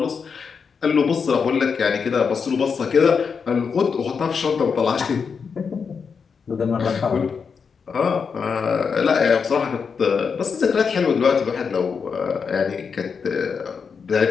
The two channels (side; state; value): right; quieter; 5.9 dB